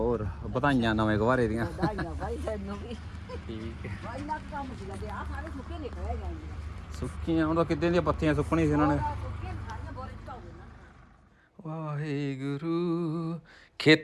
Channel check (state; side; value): identical; both; correlation 1.00